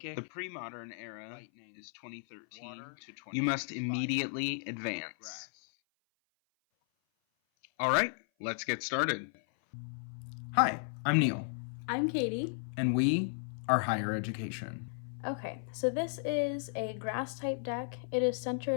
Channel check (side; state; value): right; silent; 55 dB below the other